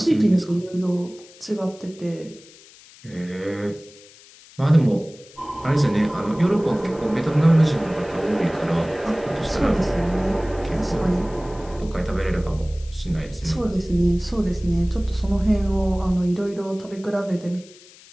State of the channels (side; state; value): left; noise; hiss, 23 dB below the sound